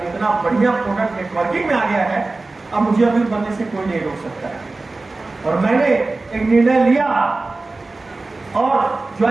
इतना बढ़िया प्रोडक्ट नेटवर्किंग में आ गया है, अब मुझे अमीर बनने से कोई नहीं रोक सकता है। और मैंने एक निर्णय लिया और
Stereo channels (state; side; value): quieter; left; 3.3 dB